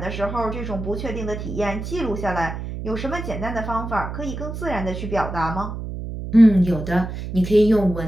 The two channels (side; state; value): right; noise; hum, 7 dB below the sound